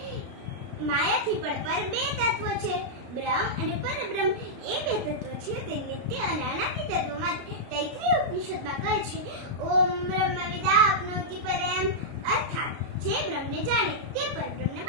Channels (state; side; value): late; left; 33 ms